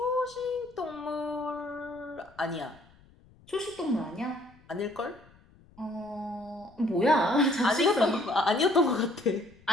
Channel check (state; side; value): noise; left; rumble, 27 dB below the sound